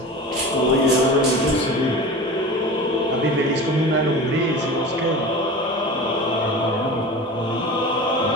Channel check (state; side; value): normal; both; correlation 0.34